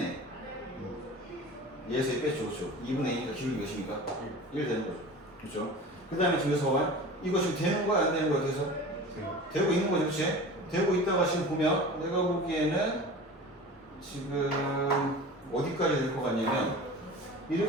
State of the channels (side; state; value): both; normal; correlation 0.36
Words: 얘에서 뺐죠. 그렇죠? 2분의 2니까 기울기 몇입니까? 1 되는 거죠. 그렇죠? 그 다음에 지금서 봐요. 이거 지금 되는 거야? 안 되는 거야? 그래서? 되고 있는 거죠. 그렇지? 되고 있다가 지금 보면 내가 보기에는 지금 어디까지 될 것 같냐면